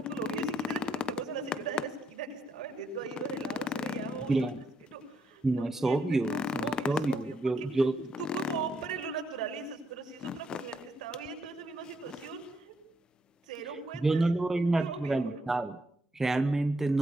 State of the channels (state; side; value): normal; both; correlation 0.76